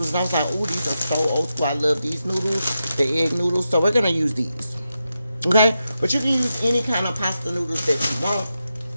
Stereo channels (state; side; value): inverted; both; correlation -0.88